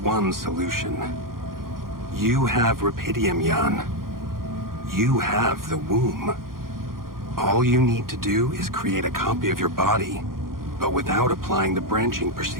solution. You have rapidium, Jan. You have the womb. All you need to do is create a copy of your body, but without applying the branching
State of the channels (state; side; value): late; left; 0.91 ms